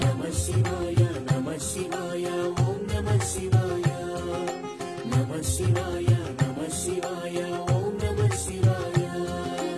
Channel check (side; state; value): both; identical; correlation 1.00